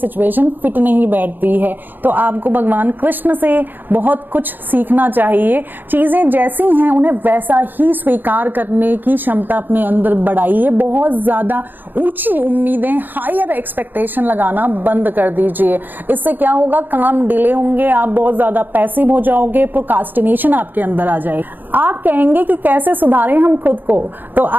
फिट नहीं बैठती है। तो आपको भगवान कृष्ण से बहुत कुछ सीखना चाहिए। चीजें जैसी हैं उन्हें वैसा ही स्वीकार करने की क्षमता अपने अंदर बढ़ाइए। बहुत ज्यादा ऊंची उम्मीदें, हायर एक्सपेक्टेशन लगाना बंद कर दीजिए। इससे क्या होगा, काम डिले होंगे, आप बहुत ज्यादा पैसिव हो जाओगे, प्रोक्रास्टिनेशन आपके अंदर आ जाएगी। आप कहेंगे कि कैसे सुधारें हम खुद को, तो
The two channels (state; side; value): late; left; 0.090 ms